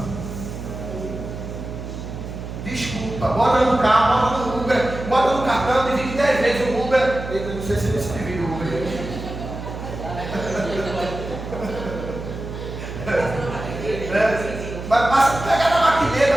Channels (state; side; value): noise; right; hum, 8 dB below the sound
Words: Desculpa. Bota no carro, bota no Uber, bota no cartão, divide 10 vezes o Uber. Eu não sei se você divide o Uber. Mas passa, pega na